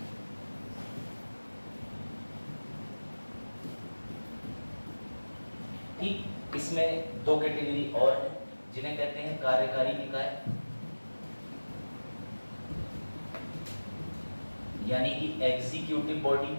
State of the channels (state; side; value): inverted; both; correlation -1.00